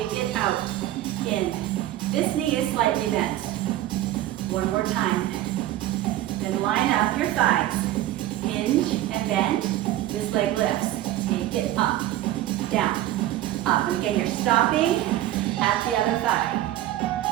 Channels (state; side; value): quieter; left; 14.2 dB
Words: it out, in. This knee is slightly bent. 1 more time. Then line up your thighs. Hinge and bend. This leg lifts. Take it up, down, up. And again, you're stopping at the other thigh.